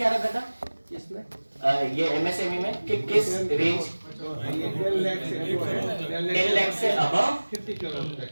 रखा था इसमें, ये एमएसएमई में, कि किस रेंज 10 लाख से अबव 50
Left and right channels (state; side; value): inverted; both; correlation -1.00